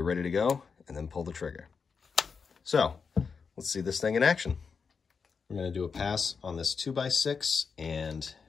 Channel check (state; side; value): quieter; right; 5.6 dB